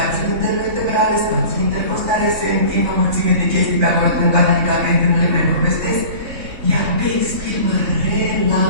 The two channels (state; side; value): late; left; 3.6 ms